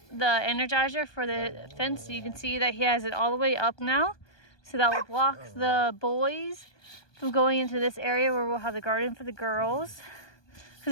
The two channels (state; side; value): late; right; 1.2 ms